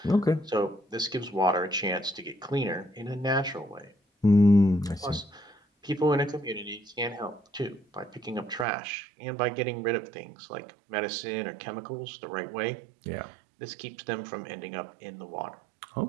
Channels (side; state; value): left; drops out; at 8.7 s